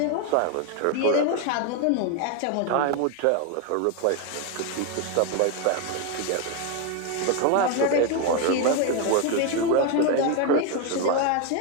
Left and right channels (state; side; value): different; both; correlation 0.01